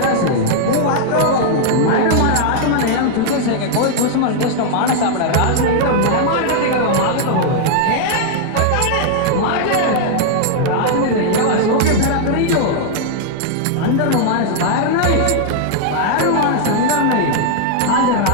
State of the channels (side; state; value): both; different; correlation -0.01